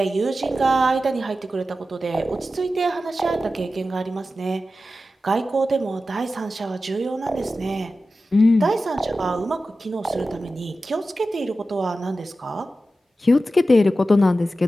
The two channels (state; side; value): normal; both; correlation 0.93